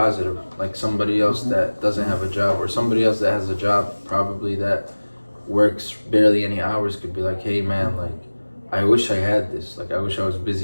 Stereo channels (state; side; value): inverted; both; correlation -1.00